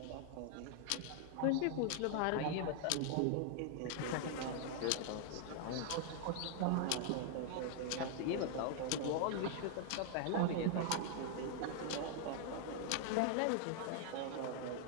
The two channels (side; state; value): both; different; correlation 0.00